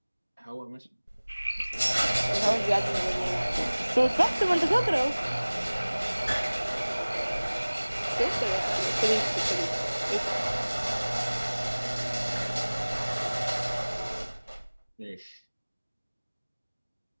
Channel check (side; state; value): both; inverted; correlation -1.00